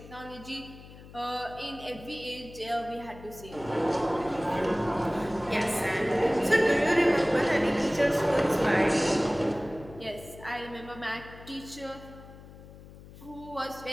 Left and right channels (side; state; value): left; noise; hum, 18 dB below the sound